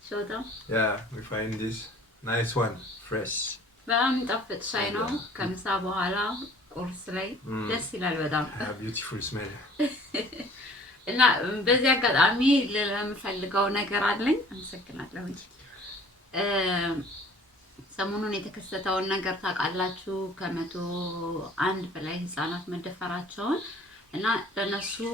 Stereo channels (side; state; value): both; normal; correlation 0.51